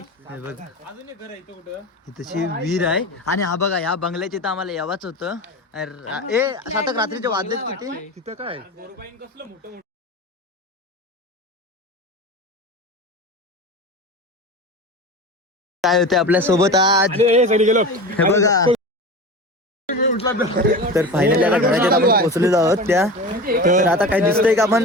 हे बघा इथची विहीर आहे आणि हा बघा या बंगल्याचे तर आम्हाला यावाच होतं. ए सातक रात्रीचे वाजलेत किती तिथं काय काय होते आपल्या सोबत आज हे बघा. तर फायनली आता घराच्या आपण पोहोचलेलो आहोत त्या. तर आता काय दिसतंय का आपण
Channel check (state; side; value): normal; both; correlation 0.30